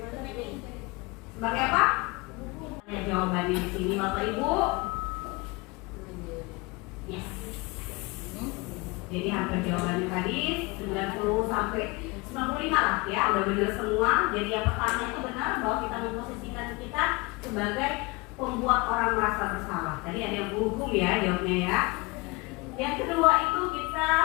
Sebagai apa? Ya, jawabannya di sini Bapak Ibu. Yes. Jadi hampir jawabannya tadi 90 sampai 95 lah ya, udah benar semua. Jadi yang pertama itu benar bahwa kita memposisikan kita sebagai pembuat orang merasa bersalah. Tadi ada yang berhukum ya jawabnya ya. Yang kedua itu kita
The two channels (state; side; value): quieter; right; 25.6 dB